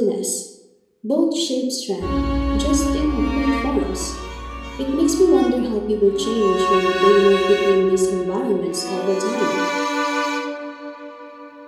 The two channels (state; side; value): identical; both; correlation 1.00